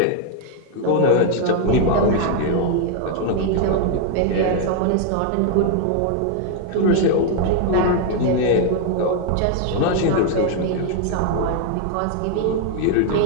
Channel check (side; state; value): both; different; correlation 0.00